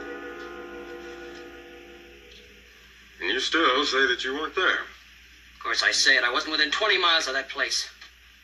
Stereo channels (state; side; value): identical; both; correlation 1.00